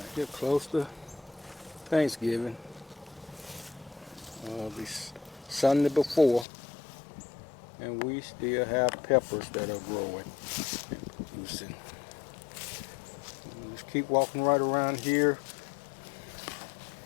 here, close to Thanksgiving. The Sunday before, and we still have peppers that are growing and producing. Just keep walking right around here.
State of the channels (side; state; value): right; drops out; at 6.5 s